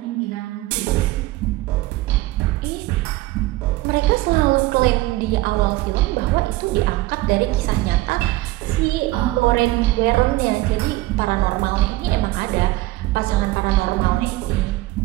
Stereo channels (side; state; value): left; quieter; 18.5 dB